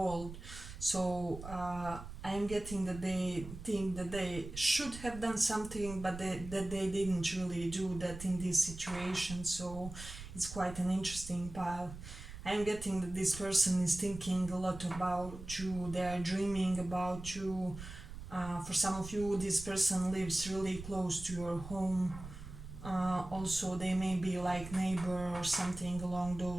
So I'm getting that they think that they should have done something, but that they didn't really do that in this situation. So it's quite an interesting path. I'm getting that this person is thinking a lot about you, they are dreaming about you. For some of you, this person lives really close to your home. Also, they may be like neighbor or something along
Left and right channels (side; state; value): right; noise; rumble, 12 dB below the sound